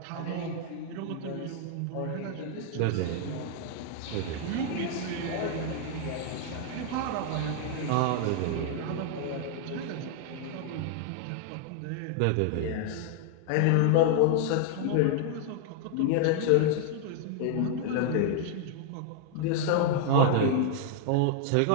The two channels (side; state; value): both; different; correlation 0.00